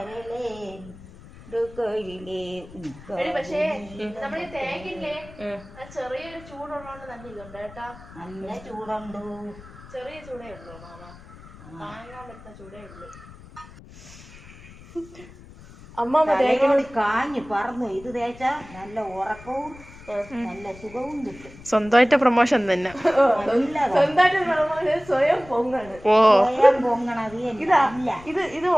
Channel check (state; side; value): noise; left; rumble, 19 dB below the sound